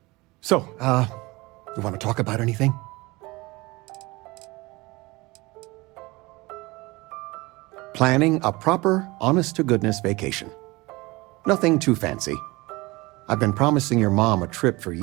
So, you want to talk about anything? Planning a proper, honest-to-goodness vacation. Nothing too fancy. I've been promising your mom a trip for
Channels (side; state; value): left; quieter; 22.6 dB